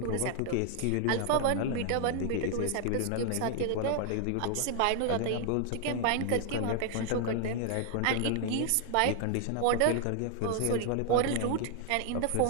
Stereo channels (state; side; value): different; both; correlation 0.00